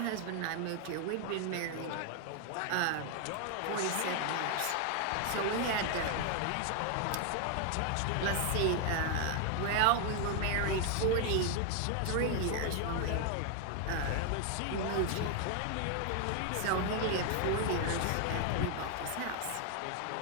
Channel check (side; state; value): both; different; correlation 0.00